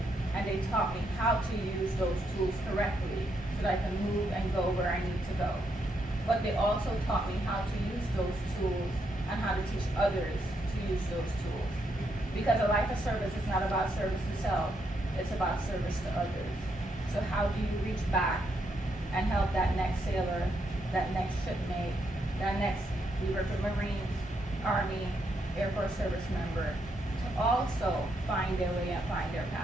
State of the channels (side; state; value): both; normal; correlation 0.78